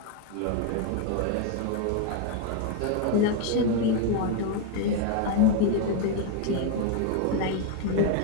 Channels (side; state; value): both; different; correlation 0.01